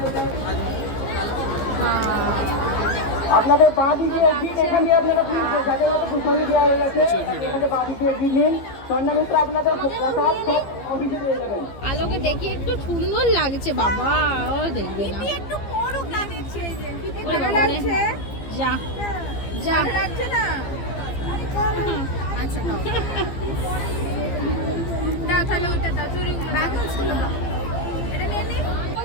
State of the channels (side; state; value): right; late; 15 ms